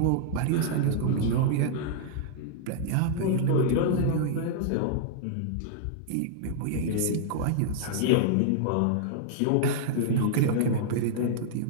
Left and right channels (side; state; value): both; different; correlation -0.01